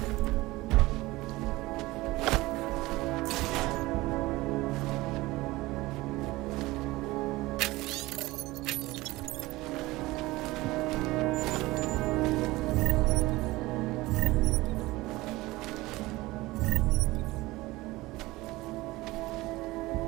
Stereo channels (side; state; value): left; quieter; 19.8 dB